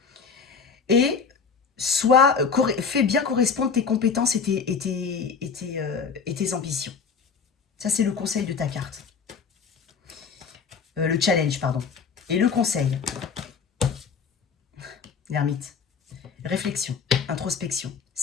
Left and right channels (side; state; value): right; quieter; 5.8 dB